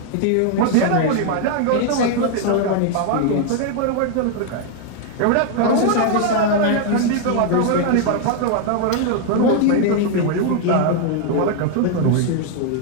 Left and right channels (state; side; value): different; both; correlation 0.00